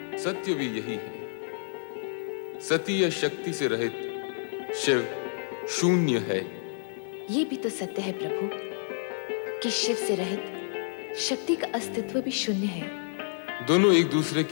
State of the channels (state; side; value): silent; right; digital silence